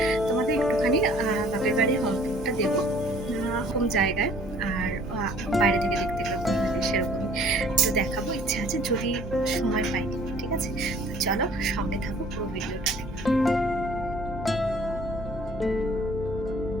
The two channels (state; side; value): normal; both; correlation 0.54